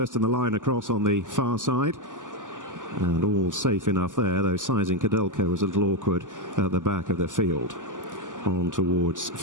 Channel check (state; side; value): late; left; 0.87 ms